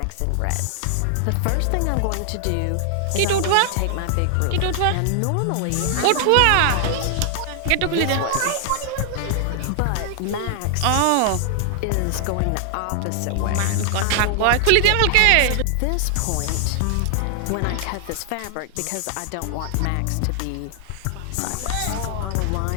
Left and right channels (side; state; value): both; different; correlation 0.00